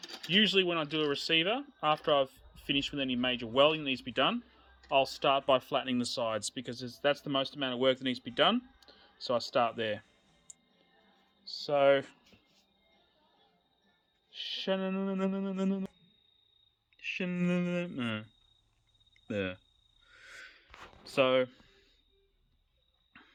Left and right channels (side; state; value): both; identical; correlation 1.00